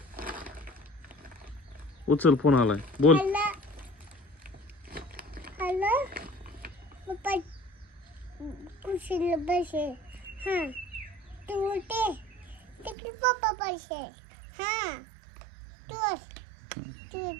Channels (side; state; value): left; drops out; at 13.0 s